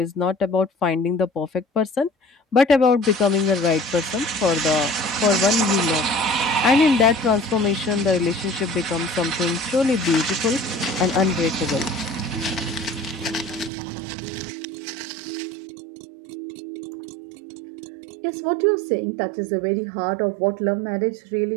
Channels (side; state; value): left; drops out; at 13.7 s